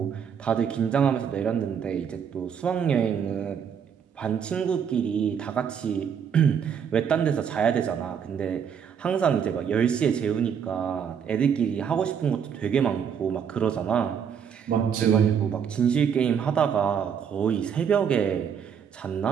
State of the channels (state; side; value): quieter; left; 7.6 dB